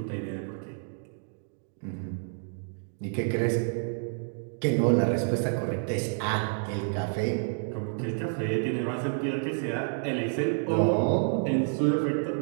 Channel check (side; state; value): left; silent; digital silence